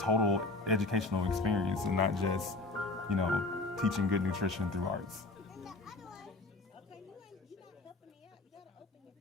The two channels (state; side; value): quieter; right; 3.3 dB